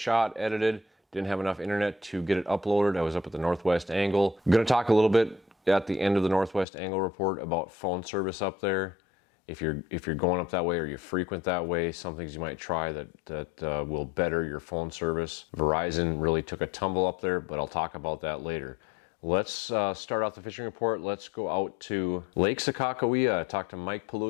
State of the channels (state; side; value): drops out; right; at 6.7 s